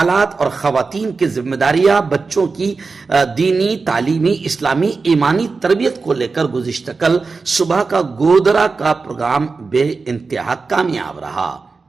اور خواتین کی ذمہ داریاں، بچوں کی دینی، تعلیمی، اسلامی، ایمانی تربیت کو لے کر گزشتہ کل صبح کا گودرا کا پروگرام بے انتہا کامیاب رہا۔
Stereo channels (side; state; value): left; quieter; 4.3 dB